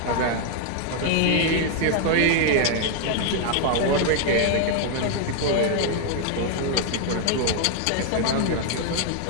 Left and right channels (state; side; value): different; both; correlation 0.00